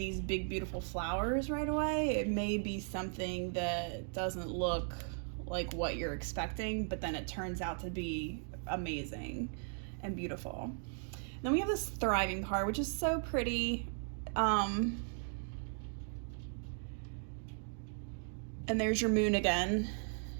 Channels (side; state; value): left; silent; 53 dB below the other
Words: big beautiful flowers right away. It may be something that doesn't look like what you're expecting, but then it turns out to be amazing and beautiful. Then we have this thriving card, which is so pretty. And there's your moon again.